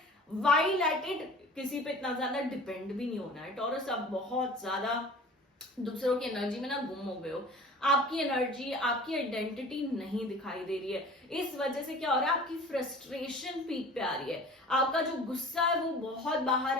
वाई लेट इट, किसी पे इतना ज्यादा डिपेंड भी नहीं होना है टॉरस। आप बहुत ज्यादा दूसरों की एनर्जी में ना गुम हो गए हो, आपकी एनर्जी, आपकी आइडेंटिटी नहीं दिखाई दे रही है। इस वजह से क्या हो रहा है, आपकी फ्रस्ट्रेशन पीक पे आ रही है, आपका जो गुस्सा है वो बहुत बाहर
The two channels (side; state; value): both; normal; correlation 0.43